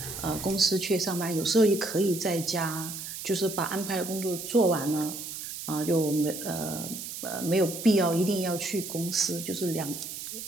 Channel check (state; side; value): noise; right; hiss, 8 dB below the sound